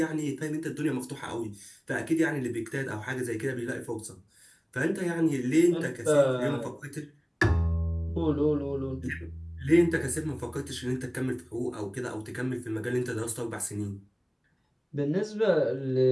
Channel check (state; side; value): identical; both; correlation 1.00